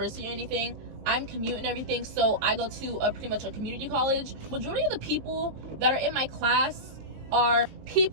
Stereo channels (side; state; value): left; late; 20 ms